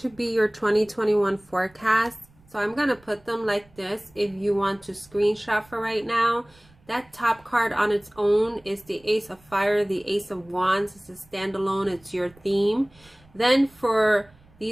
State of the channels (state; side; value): noise; right; rumble, 29 dB below the sound